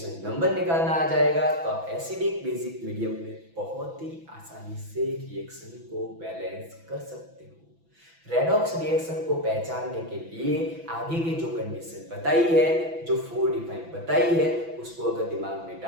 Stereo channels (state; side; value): late; left; 6.0 ms